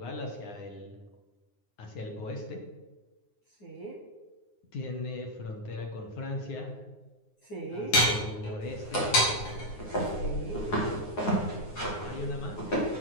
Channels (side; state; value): right; late; 9.7 ms